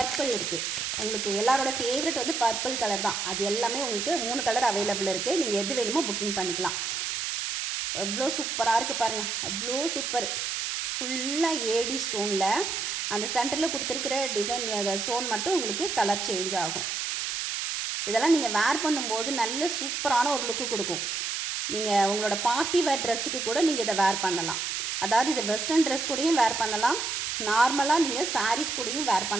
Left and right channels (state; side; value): noise; right; hiss, 2 dB below the sound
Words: இருக்குது. உங்களுக்கு எல்லாரோட ஃபேவரட் வந்து பர்பிள் கலர் தான். அது எல்லாமே உங்களுக்கு 3 கலர் அவைலபிள் இருக்குது. நீங்கள் எது வேணுமோ புக்கிங் பண்ணிக்கலாம். எவ்வளோ சூப்பராக இருக்குது பாருங்கள், அவ்வளோ சூப்பர். ஃபுல்லாக ஏடி ஸ்டோனில் அந்த சென்டரில் கொடுத்துருக்கிற டிசைன் ஸ்டோன் மட்டும் உங்களுக்கு கலர் சேஞ்ச் ஆகும். இதெல்லாம் நீங்கள் வேர் பண்ணும்போது நல்ல சூப்பரான ஒரு லுக்கு கொடுக்கும். நீங்கள் உங்களோட பார்ட்டி வேர் ட்ரெஸ்ஸுக்கு கூட நீங்கள் இதை வேர் பண்ணலாம். அதாவது இதை வெஸ்டர்ன் ட்ரெஸ் கூடயும் வேர் பண்ணலாம், நார்மலாக நீங்கள் சாரீஸ் கூடயும் வேர்